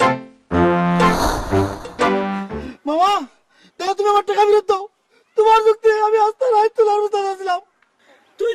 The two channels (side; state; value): both; identical; correlation 1.00